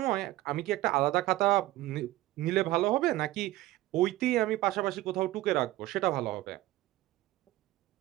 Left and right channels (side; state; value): left; quieter; 17.0 dB